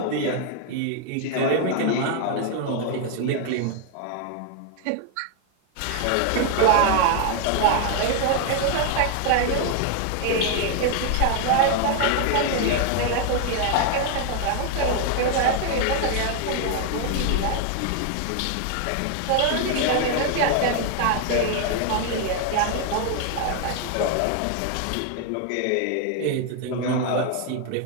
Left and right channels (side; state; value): both; different; correlation 0.01